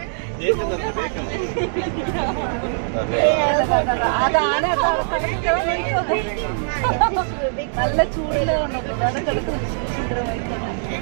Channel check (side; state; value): left; silent; digital silence